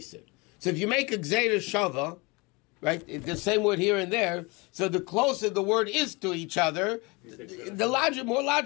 So if you make a gzeira shava, right, the same word here and there, so the closer the word is to each other, more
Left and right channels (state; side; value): quieter; right; 27.0 dB